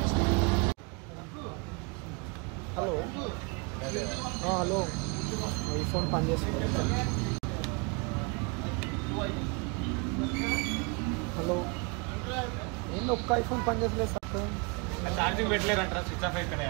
హలో హలో ఈ ఫోన్ పనిచేస్తుంది. హలో ఏంటి ఒక్క ఐఫోన్ పనిచేస్తలేదు సార్. ఛార్జింగ్ పెట్టలేదంటారా? స్విచ్ ఆఫ్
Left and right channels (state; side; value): quieter; left; 30.9 dB